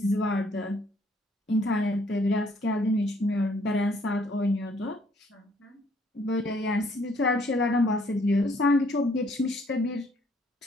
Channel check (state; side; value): normal; both; correlation 0.64